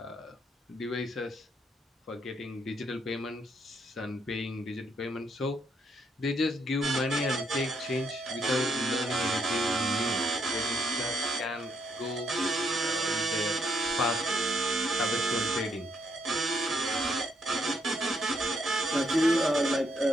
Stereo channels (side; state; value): both; normal; correlation 0.74